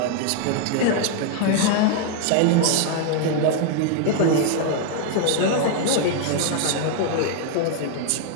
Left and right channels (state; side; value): different; both; correlation 0.00